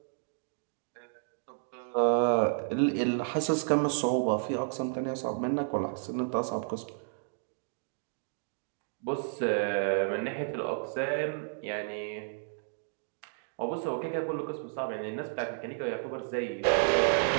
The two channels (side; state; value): left; silent; digital silence